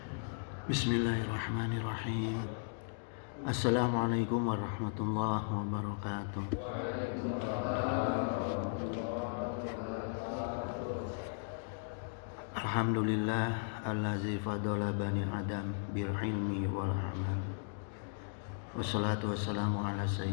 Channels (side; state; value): right; silent; digital silence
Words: Assalamualaikum warahmatullahi wabarakatuh. Alhamdulillah allazi fadala bani adam bil ilmi wal amal. Wassalatu wassalamu ala